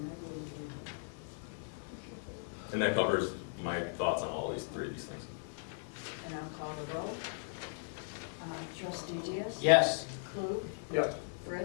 And that covers my thoughts on all these three of these things. And I'll call the roll. Trustee Diaz? Yes. Klug, Yes.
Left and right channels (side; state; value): right; silent; 53 dB below the other